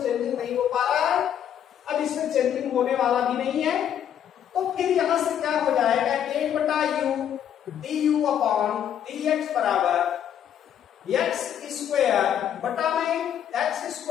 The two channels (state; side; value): quieter; right; 9.6 dB